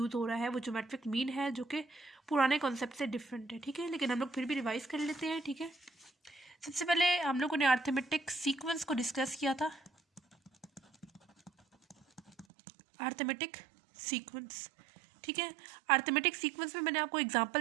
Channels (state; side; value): drops out; left; at 12.5 s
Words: हो रहा है वो ज्योमेट्रिक मीन है, जो कि पुराने कॉन्सेप्ट से डिफरेंट है, ठीक है। लेकिन हम लोग फिर भी रिवाइज कर लेते हैं, ठीक है। सबसे पहले हम लोगों ने अर्थमेटिक सीक्वेंस को डिस्कस किया था। अर्थमेटिक सीक्वेंस, ठीक है। अर्थमेटिक सीक्वेंस में मैंने आपको